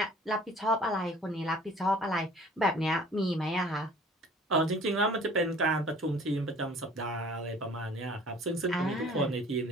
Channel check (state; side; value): normal; both; correlation 0.50